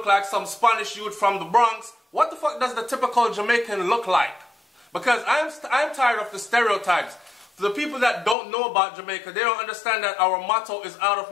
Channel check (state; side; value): drops out; right; at 8.3 s